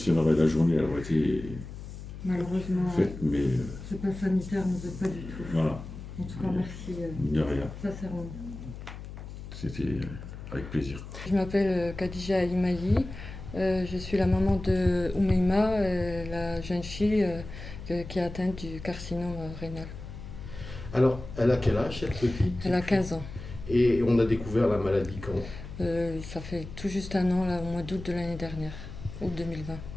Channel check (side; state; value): left; noise; hum, 11 dB below the sound